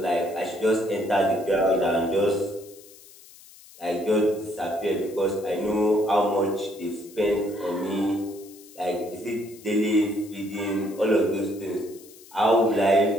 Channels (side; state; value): left; noise; hiss, 22 dB below the sound